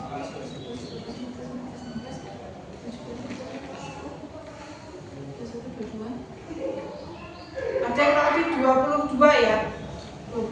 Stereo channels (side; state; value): both; identical; correlation 1.00